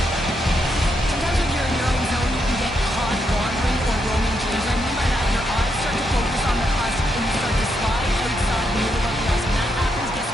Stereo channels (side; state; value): both; normal; correlation 0.80